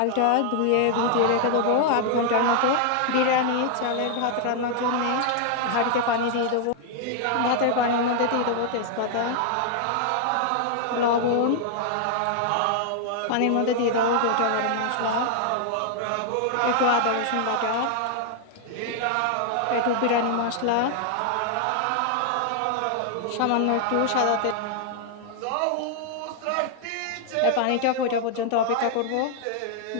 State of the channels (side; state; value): both; different; correlation 0.00